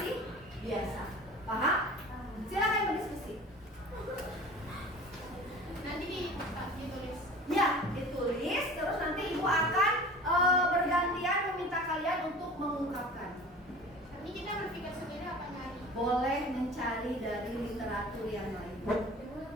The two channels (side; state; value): both; normal; correlation 0.41